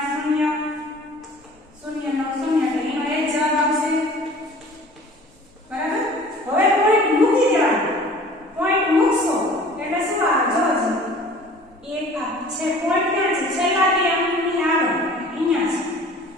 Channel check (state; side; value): normal; both; correlation 0.47